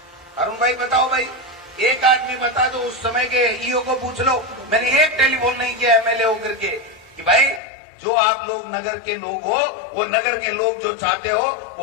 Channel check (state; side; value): drops out; right; at 7.6 s